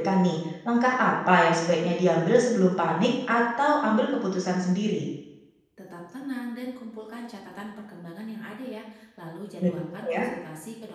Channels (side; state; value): both; identical; correlation 1.00